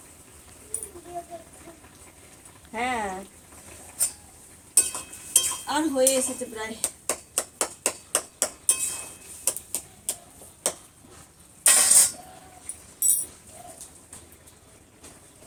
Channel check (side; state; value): both; identical; correlation 1.00